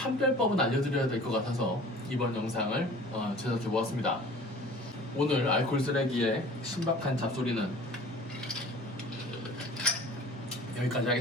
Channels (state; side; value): normal; both; correlation 0.46